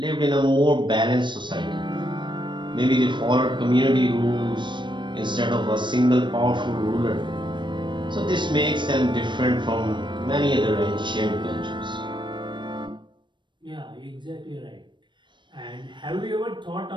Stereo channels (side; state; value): left; late; 0.22 ms